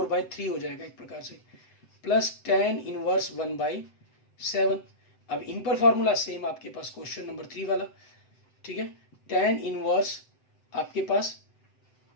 हो जाएगा एक प्रकार से, प्लस tan इनवर्स 1/7। अब इन पर फॉर्मूला सेम आपके पास क्वेश्चन नंबर 3 वाला, ठीक है, tan इनवर्स आपके पास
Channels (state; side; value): late; right; 7.8 ms